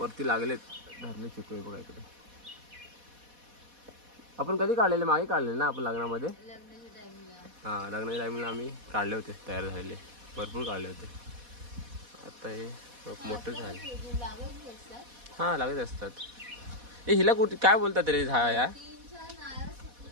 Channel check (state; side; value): late; left; 4.1 ms